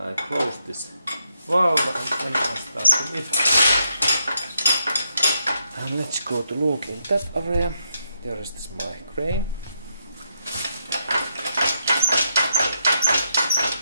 I close this valve, and then I start to lift. And let's go to look in that area. There is this my crane.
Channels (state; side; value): inverted; both; correlation -0.80